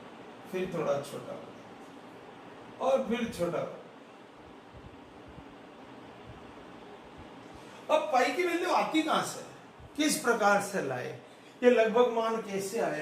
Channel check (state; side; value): identical; both; correlation 1.00